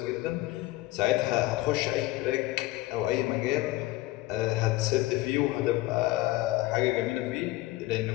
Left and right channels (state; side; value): quieter; right; 18.0 dB